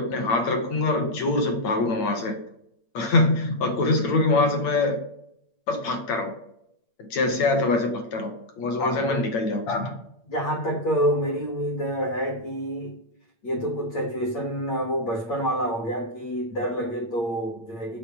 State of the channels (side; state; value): right; late; 8.7 ms